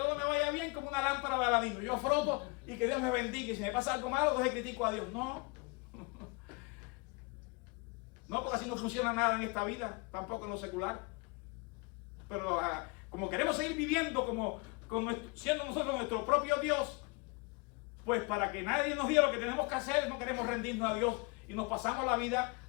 me vaya bien como una lámpara de Aladino. Yo froto y que Dios me bendiga, y si me pasa algo malo, entonces critico a Dios. No. No, porque así no funciona nada en esta vida, tampoco en lo secular. Pero como queremos seguir viviendo como siendo nosotros nuestro propio Dios, pues para que nadie nos diga lo que tenemos que hacer, no queremos rendirnos a Dios y nos pasamos la vida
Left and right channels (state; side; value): quieter; right; 29.5 dB